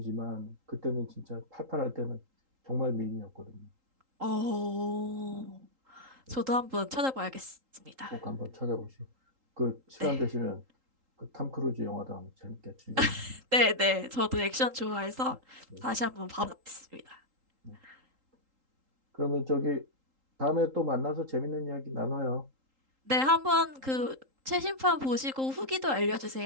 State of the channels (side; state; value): left; late; 3.8 ms